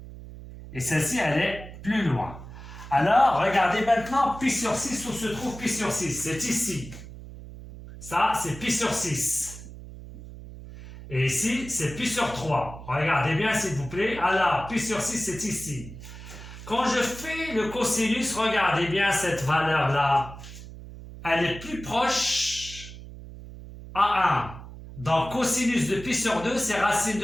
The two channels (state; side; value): noise; right; hum, 14 dB below the sound